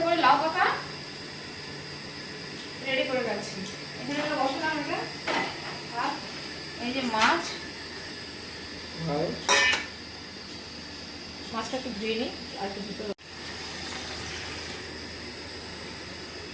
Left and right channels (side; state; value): both; identical; correlation 1.00